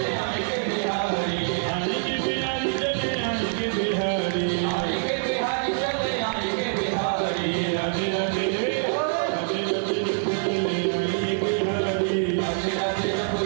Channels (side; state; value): left; silent; 62 dB below the other